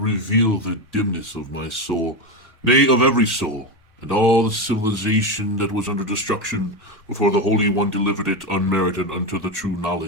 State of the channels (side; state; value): both; normal; correlation 0.14